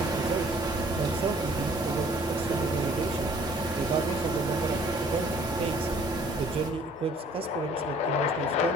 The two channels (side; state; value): both; normal; correlation 0.57